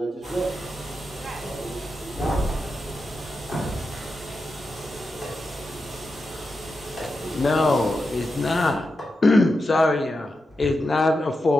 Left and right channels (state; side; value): normal; both; correlation 0.88